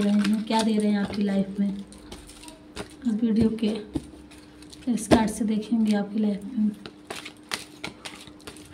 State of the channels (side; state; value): both; identical; correlation 1.00